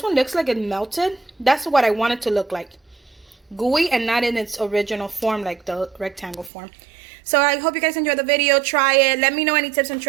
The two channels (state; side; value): drops out; left; at 6.5 s